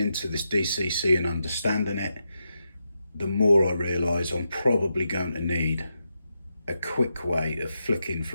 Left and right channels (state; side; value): inverted; both; correlation -0.86